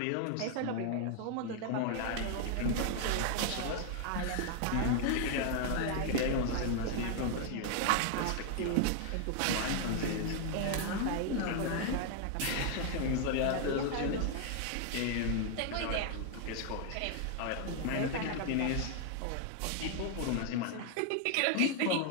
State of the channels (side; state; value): both; different; correlation 0.00